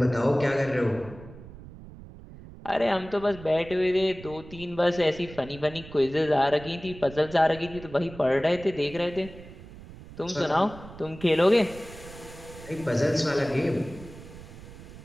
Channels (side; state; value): right; noise; rumble, 16 dB below the sound